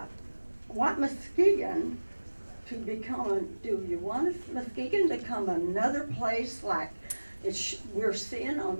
want Muskegon to become, do you want Muskegon to become another place like we're seeing on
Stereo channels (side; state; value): both; inverted; correlation -1.00